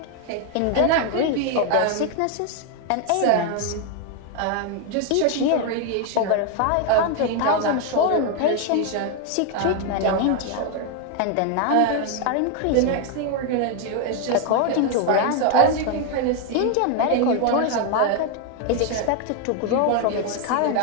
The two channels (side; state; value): both; different; correlation 0.01